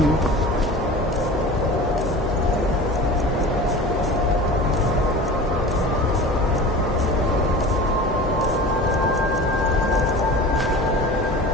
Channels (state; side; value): normal; both; correlation 0.36